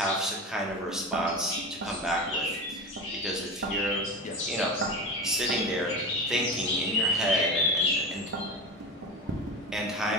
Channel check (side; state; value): both; normal; correlation 0.26